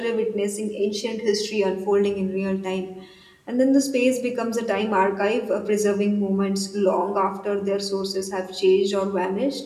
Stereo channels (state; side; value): identical; both; correlation 1.00